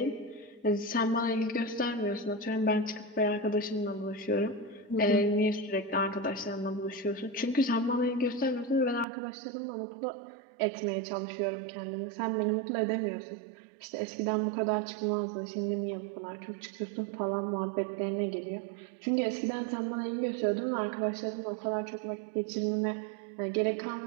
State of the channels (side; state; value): left; drops out; at 9.1 s